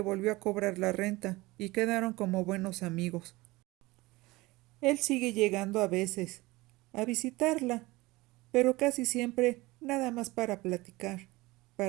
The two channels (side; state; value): left; quieter; 21.0 dB